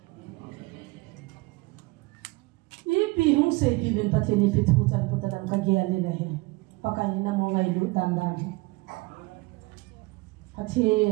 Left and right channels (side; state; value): left; quieter; 23.6 dB